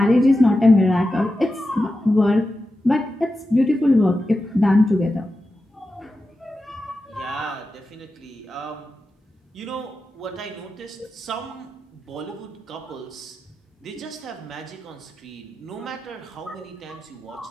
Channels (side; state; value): both; normal; correlation 0.92